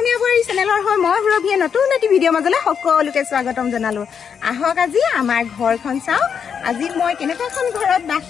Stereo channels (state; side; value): quieter; right; 7.1 dB